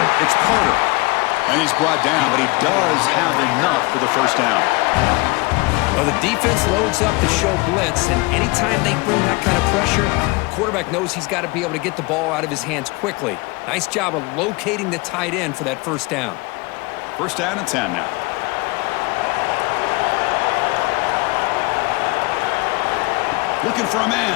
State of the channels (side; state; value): right; quieter; 24.8 dB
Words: It's Carter. And he's brought down, but he does have enough for the 1st down. Well, the defense loads up to show blitz, and anytime they bring that kind of pressure, the quarterback knows he's got to be able to get the ball out of his hands quickly. Nice job of locating the tight end for that first down. First down and 10 now. Looking for a